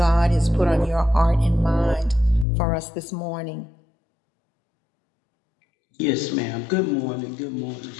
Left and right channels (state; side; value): drops out; right; at 2.5 s